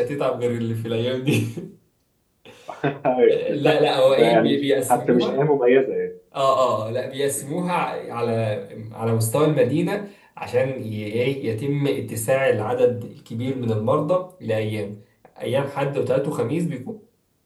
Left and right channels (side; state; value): both; identical; correlation 1.00